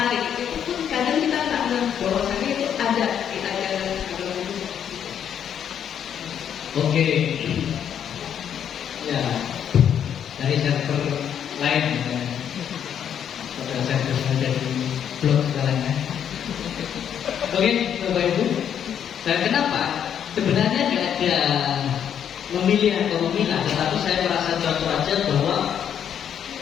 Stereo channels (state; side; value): quieter; right; 8.9 dB